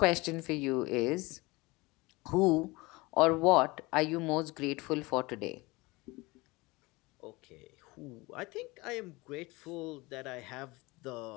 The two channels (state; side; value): quieter; right; 23.3 dB